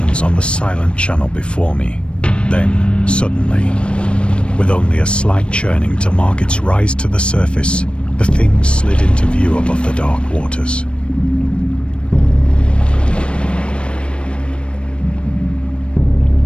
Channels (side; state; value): right; late; 0.058 ms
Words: on the silent channel before me. Then, suddenly, with only a slight churning to mark its rise to the surface, the thing slid into view above the dark waters.